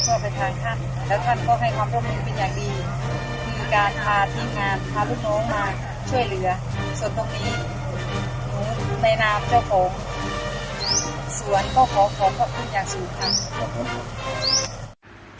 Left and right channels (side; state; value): both; identical; correlation 1.00